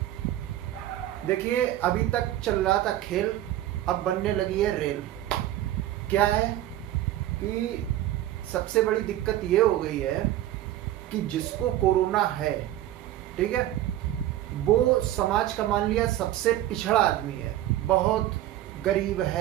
देखिए, अभी तक चल रहा था खेल, अब बनने लगी है रेल। क्या है कि सबसे बड़ी दिक्कत ये हो गई है कि जिसको कोरोना है, ठीक है, वो समाज का मान लिया सबसे पिछड़ा आदमी है, बहुत गरीब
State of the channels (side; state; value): left; quieter; 13.6 dB